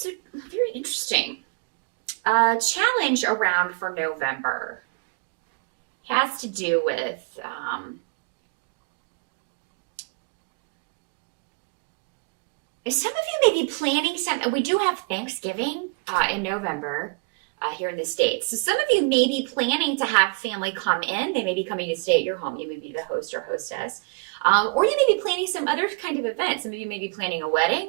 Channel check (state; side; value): quieter; left; 33.5 dB